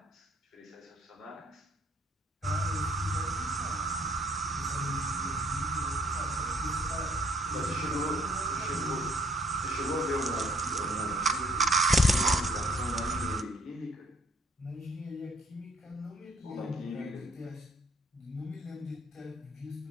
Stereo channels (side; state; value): both; normal; correlation 0.63